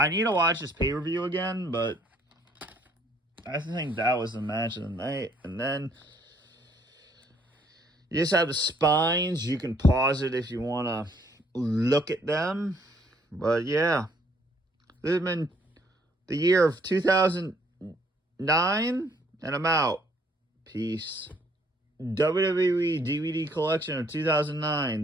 need to watch this pay-per-view again, but I think that was the match of the night. And then you just have the spines. You can pause it if you want to look at them. But yeah, this has been the year of 2009, and I'm out. Peace. WWE DVD collection of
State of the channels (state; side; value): normal; both; correlation 0.65